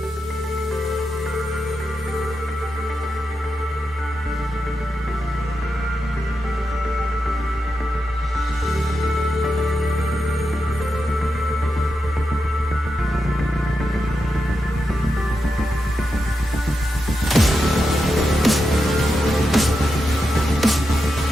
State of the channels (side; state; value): both; normal; correlation 0.87